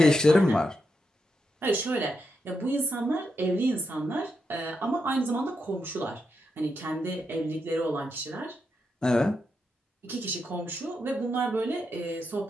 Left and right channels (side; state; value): both; normal; correlation 0.84